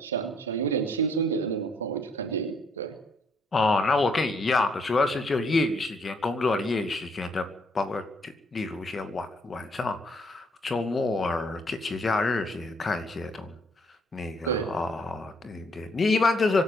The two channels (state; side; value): normal; both; correlation 0.68